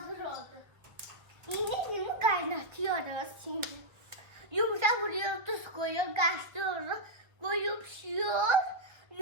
oldu. Yine kaynatıyoruz şimdi. Yumurta vuruyor, tuz koyuyor, karıştırıyoruz. Koyup pişiyor.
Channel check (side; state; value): left; late; 1.6 ms